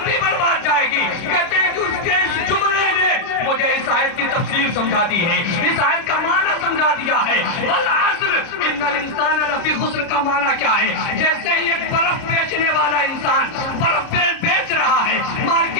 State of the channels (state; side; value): late; right; 30 ms